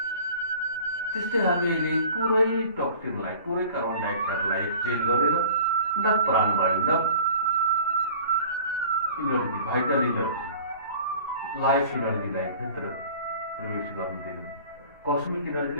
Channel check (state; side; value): inverted; both; correlation -0.45